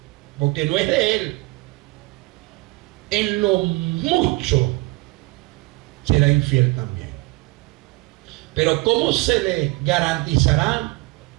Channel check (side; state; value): left; quieter; 22.9 dB